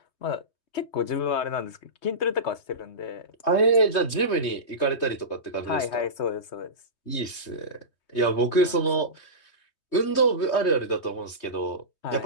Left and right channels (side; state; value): right; late; 3.2 ms